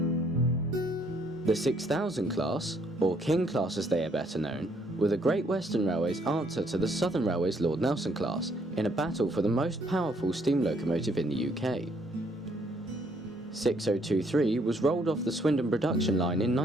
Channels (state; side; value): normal; both; correlation 0.68